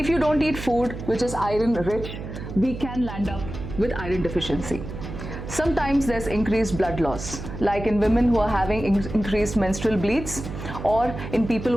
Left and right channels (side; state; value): right; noise; hum, 9 dB below the sound